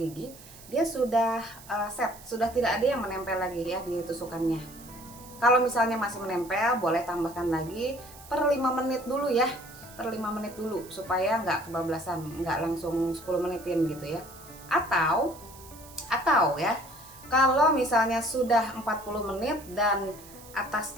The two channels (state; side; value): noise; right; hiss, 19 dB below the sound